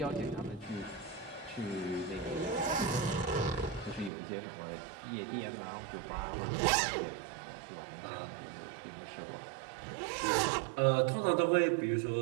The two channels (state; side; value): drops out; left; at 4.1 s